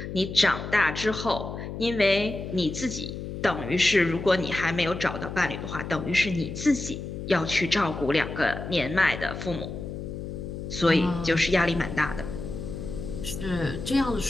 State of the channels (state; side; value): noise; left; hum, 7 dB below the sound